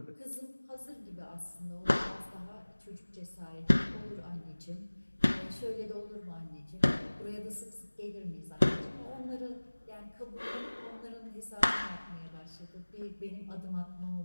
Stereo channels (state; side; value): inverted; both; correlation -1.00